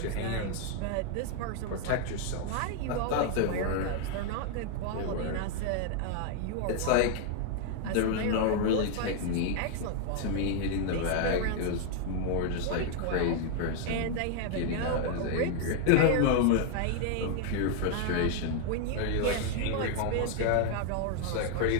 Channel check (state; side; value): different; both; correlation 0.00